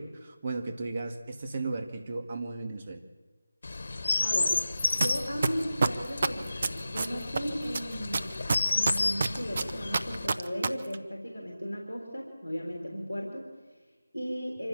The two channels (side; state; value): both; inverted; correlation -0.93